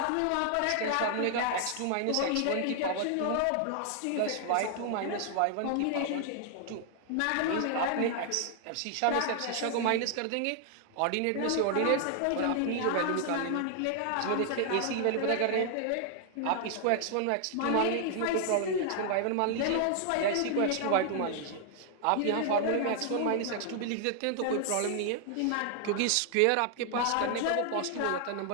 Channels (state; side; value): different; both; correlation 0.00